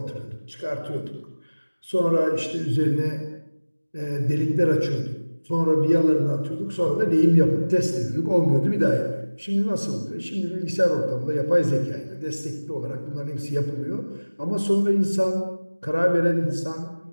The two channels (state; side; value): inverted; both; correlation -1.00